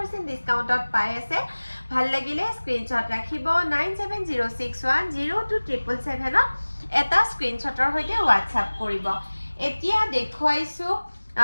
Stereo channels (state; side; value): inverted; both; correlation -1.00